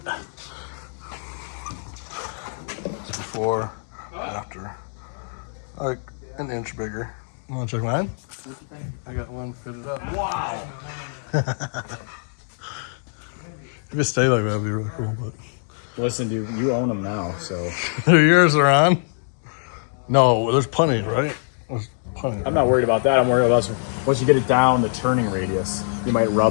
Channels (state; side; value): silent; right; digital silence